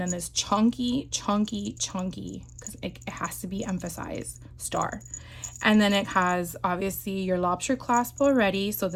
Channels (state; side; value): identical; both; correlation 1.00